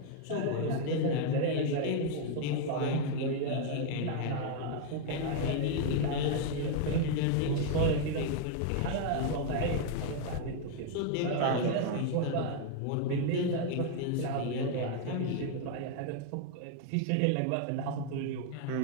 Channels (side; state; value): both; different; correlation 0.00